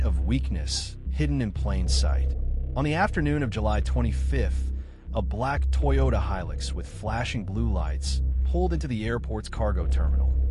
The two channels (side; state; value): both; identical; correlation 1.00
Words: of weakness hidden in plain sight. On the afternoon of July 25th, a black Toyota Hilux with flashing blue lights pulled into the airport's cargo terminal.